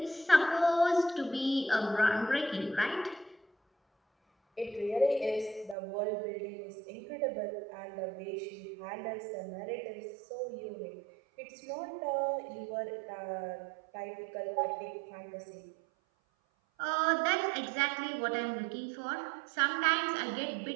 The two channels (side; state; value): left; drops out; at 5.8 s